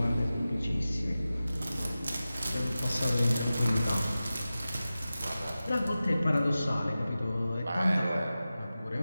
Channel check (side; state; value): both; inverted; correlation -0.95